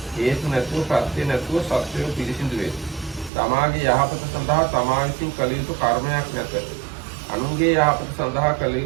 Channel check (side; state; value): left; drops out; at 3.3 s